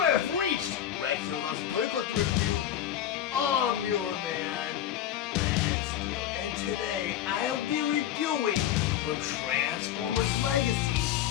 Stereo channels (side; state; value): right; quieter; 11.0 dB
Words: have reached Rat Steele's Awesome Toy Collector Review. I'm your man, Rat Steele, and today I'll be reviewing from Transformers Legacy,